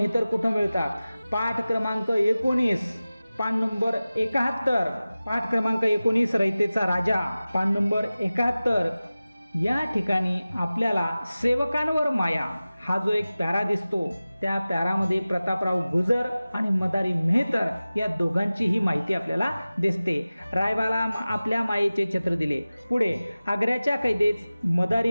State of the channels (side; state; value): both; inverted; correlation -0.96